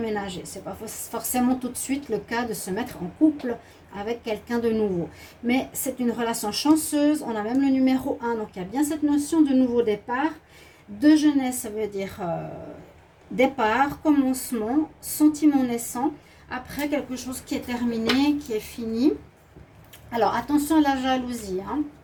Ce n'est pas forcément tout de suite le cas de se mettre en couple avec quelqu'un de nouveau. Mais c'est une relation chanceuse, on a même le numéro 1, donc il y a bien cette notion de nouveau départ. De jeunesse, ça veut dire départ, commencement, sentiment naissant, après quelque chose qui est terminé, qui est fini. Alors attention à la jalousie, hein.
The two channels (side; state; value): both; identical; correlation 1.00